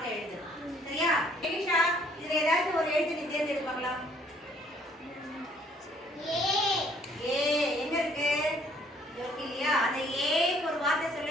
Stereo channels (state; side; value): normal; both; correlation 0.62